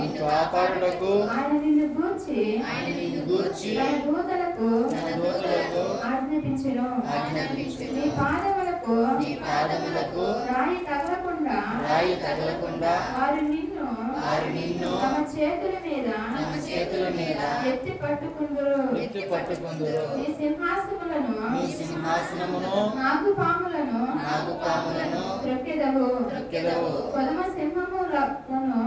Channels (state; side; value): identical; both; correlation 1.00